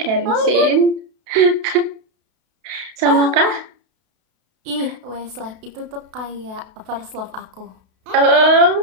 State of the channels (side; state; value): left; late; 32 ms